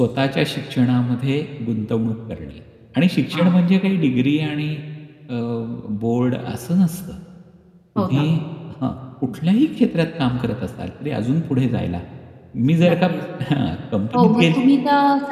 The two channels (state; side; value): identical; both; correlation 1.00